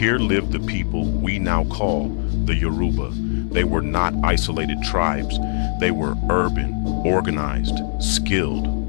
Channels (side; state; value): right; silent; 64 dB below the other